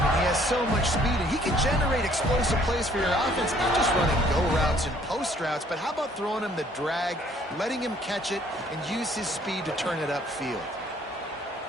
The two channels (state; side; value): normal; both; correlation 0.61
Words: has so much speed, and he can generate explosive plays for your offense, not just running go routes and post routes, but how about throwing him the drag, letting him catch it, and use his speed to turn it upfield.